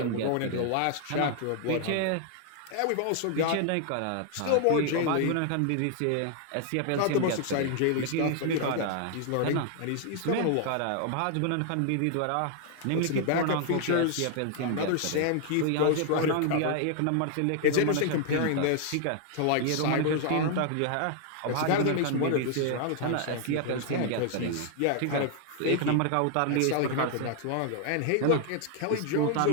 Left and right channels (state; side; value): different; both; correlation 0.00